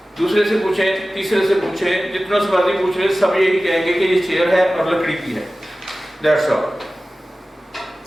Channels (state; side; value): normal; both; correlation 0.96